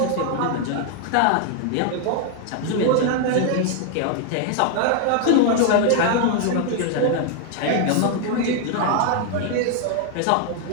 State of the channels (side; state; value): both; different; correlation 0.00